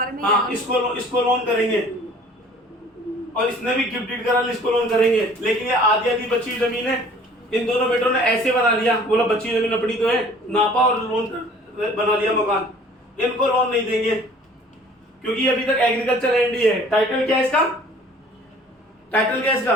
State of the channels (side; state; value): both; normal; correlation 0.51